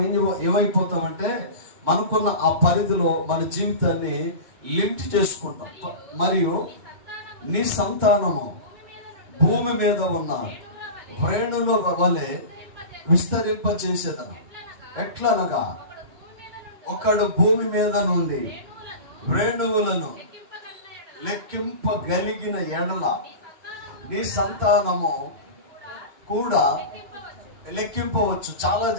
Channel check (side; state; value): left; late; 2.9 ms